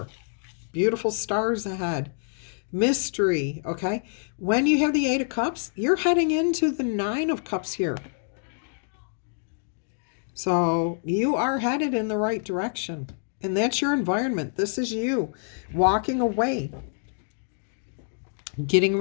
Beautiful stars ahead. Mystery. Okay? When you have the Eight of Cups, you're heading into the Nine of Cups here. So you are headed in the right direction. And that's your environment. This is you walking away. Getting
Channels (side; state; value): right; silent; digital silence